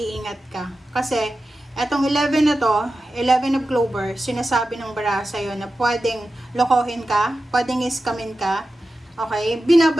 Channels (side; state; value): both; normal; correlation 0.93